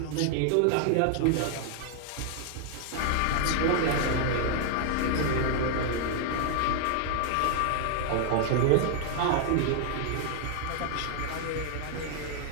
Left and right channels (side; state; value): both; different; correlation 0.00